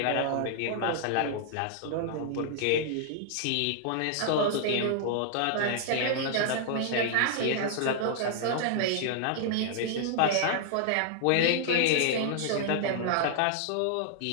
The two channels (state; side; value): different; both; correlation -0.01